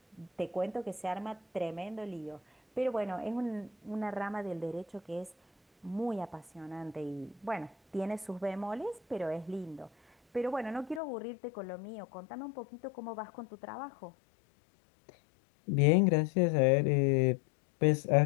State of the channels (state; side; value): drops out; right; at 11.0 s